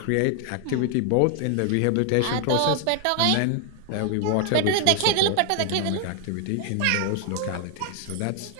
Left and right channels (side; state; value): both; different; correlation 0.00